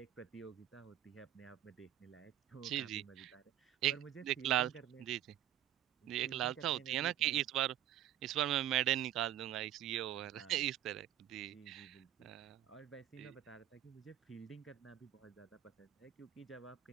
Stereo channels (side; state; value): left; quieter; 12.3 dB